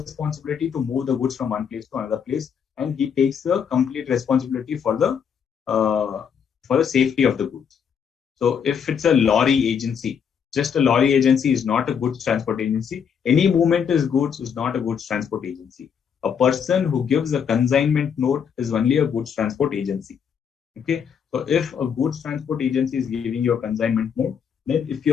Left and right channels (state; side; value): quieter; right; 7.4 dB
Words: to move the goods from one place to another place, and he takes the complete responsibility for the safety of the goods. So if it's a lorry agency, just a lorry agency is not a goods transport agency. Any movement is goods is not a goods transport agency. A person who gives a consignment note is only a goods transport agency. Okay. So if a goods transport agency is giving you a consignment note, then if